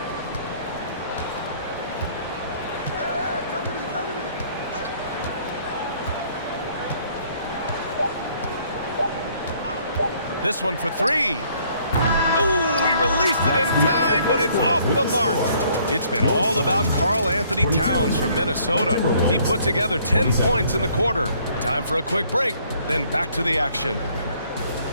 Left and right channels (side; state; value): both; inverted; correlation -0.62